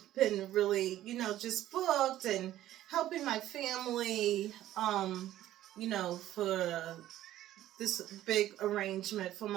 been really, just booked and helping my family, for this big arrangement for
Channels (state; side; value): quieter; left; 13.5 dB